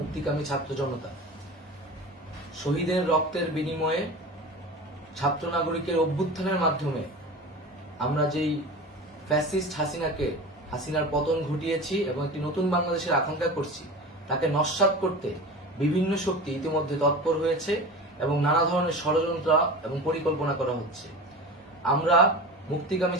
ছাত্র জনতা, শহীদের রক্তের বিনিময়ে ছাত্র নাগরিকের অভ্যুত্থানের মাধ্যমে আমরা যেই ফ্যাসিস্ট হাসিনার পতন ঘটিয়েছি এবং একটি নতুন বাংলাদেশের আকাঙ্ক্ষা করছি, তাকে নস্যাৎ করতে বিভিন্ন শক্তি ইতিমধ্যে তৎপর হয়েছে এবং নানা ধরনের ষড়যন্ত্র এবং পরিকল্পনা করা হচ্ছে। আমরা মুক্তিকামী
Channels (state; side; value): normal; both; correlation 0.32